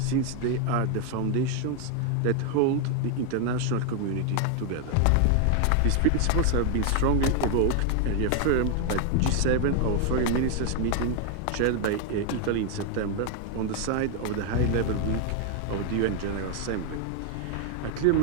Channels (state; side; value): different; both; correlation 0.00